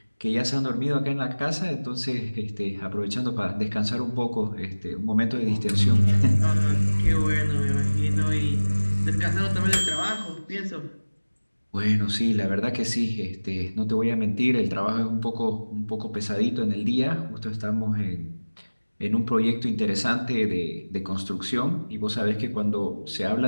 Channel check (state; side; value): inverted; both; correlation -1.00